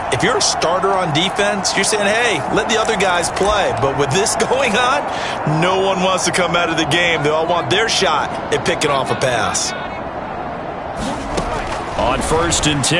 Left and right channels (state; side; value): identical; both; correlation 1.00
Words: if you're a starter on defense, you're saying, hey, let the other guys play. But with this going on, no one wants to come out of the game. They all want their shot at picking off a pass. On 1st and